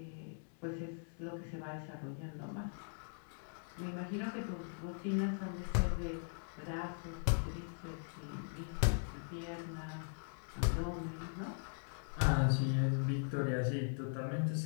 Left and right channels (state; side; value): silent; right; digital silence